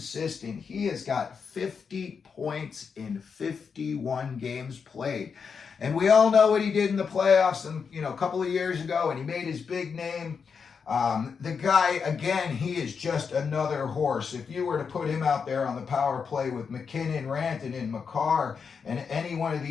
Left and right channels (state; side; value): quieter; right; 6.0 dB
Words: He has got 50 points in 51 games played. And we all know what he did in the playoffs a couple of years ago, and he made his big name. The guy, again, he is just another horse. If you were to put him out there on the power play with Mackinnon, Rantanen, Makar, and any one of